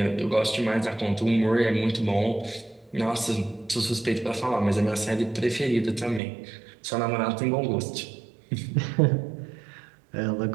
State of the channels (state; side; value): drops out; left; at 6.2 s